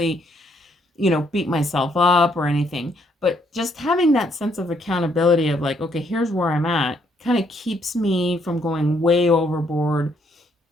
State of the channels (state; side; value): normal; both; correlation 0.71